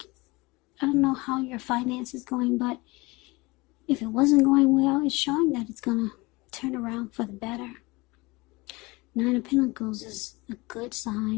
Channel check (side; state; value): right; quieter; 23.6 dB